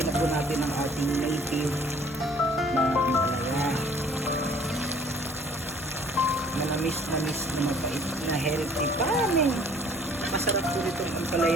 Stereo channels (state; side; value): normal; both; correlation 0.55